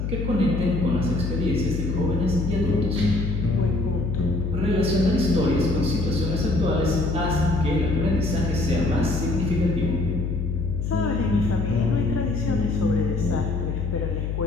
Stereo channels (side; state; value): left; noise; hum, 2 dB below the sound